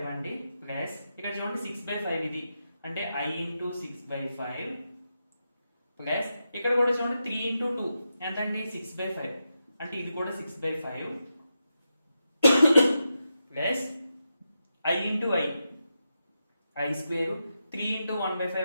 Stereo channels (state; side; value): inverted; both; correlation -0.88